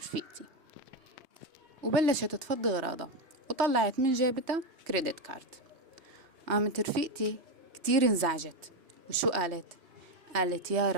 وبلشت تفضي أغراضها وطلعت من جيبتها كريدت كارد. قامت رفيقتي كتير انزعجت. وشو قالت؟ قالت يا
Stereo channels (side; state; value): left; late; 3.2 ms